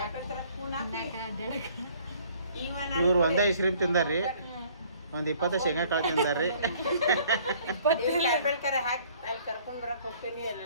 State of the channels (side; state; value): both; inverted; correlation -0.57